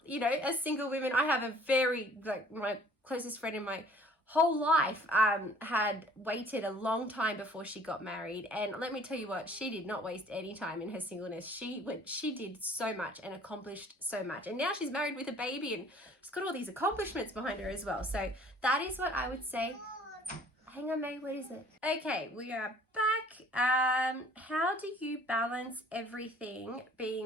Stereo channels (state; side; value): normal; both; correlation 0.53